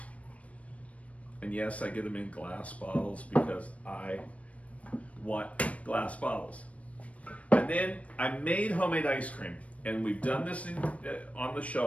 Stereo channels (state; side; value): late; right; 0.065 ms